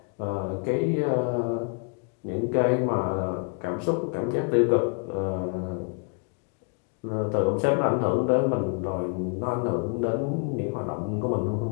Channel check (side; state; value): right; quieter; 36.2 dB